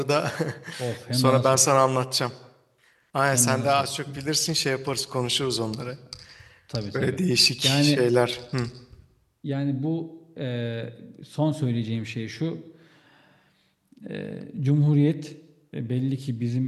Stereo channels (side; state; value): both; identical; correlation 1.00